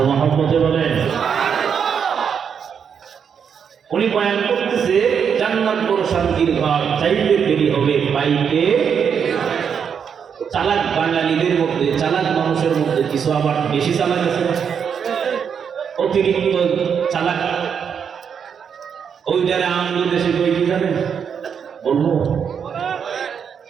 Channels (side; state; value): left; quieter; 7.2 dB